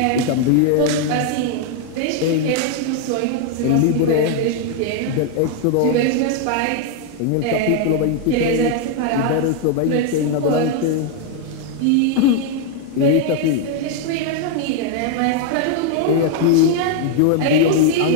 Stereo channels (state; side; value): different; both; correlation 0.00